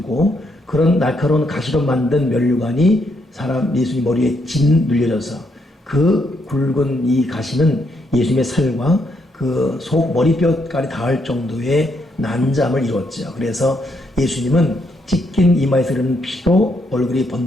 그런 날카로운 가시로 만든 면류관이 사람 예수님 머리에 진 눌려져서 그 굵은 이 가시는 예수님의 살과 그 속 머리뼈까지 닿을 정도의 난잠을 이뤘죠. 그래서 예수님은 찢긴 이마에서 흐르는 피로 얼굴이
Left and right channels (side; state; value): both; normal; correlation 0.76